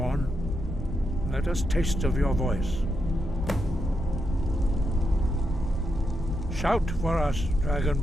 Let us taste of your voice. Shout for us,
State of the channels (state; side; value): normal; both; correlation 0.83